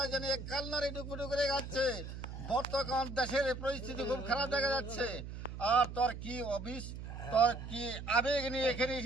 জানি এক কালনারে ডুকুডু করে যাচ্ছে। বর্তমান দেশের পরিস্থিতি খুব খারাপ দেখা যাচ্ছে। আর তোর কি অফিস, তোর কি আবেগ নিয়ে এখানে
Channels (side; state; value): right; noise; hum, 9 dB below the sound